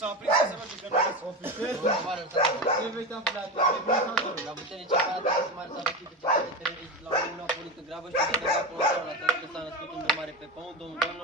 s-a aprins să se merge că nu vis. Ce veți aflat? La putere ce parată că se mare s-a vestit că ce teroriști la un a pornit în grabă și că se acolo la tot că s-a născut un mare pe pământ, domnul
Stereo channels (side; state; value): both; normal; correlation 0.20